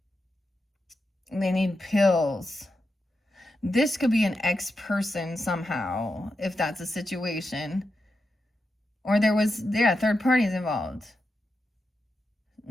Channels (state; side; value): normal; both; correlation 0.87